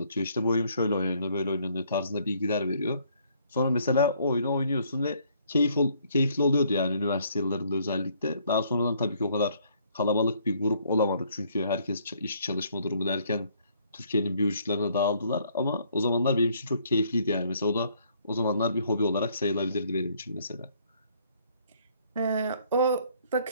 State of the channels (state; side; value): inverted; both; correlation -0.65